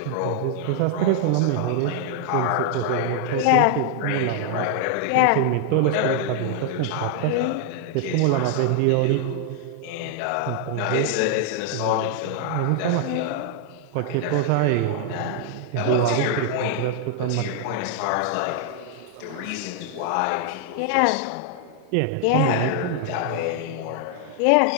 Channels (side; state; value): both; different; correlation 0.00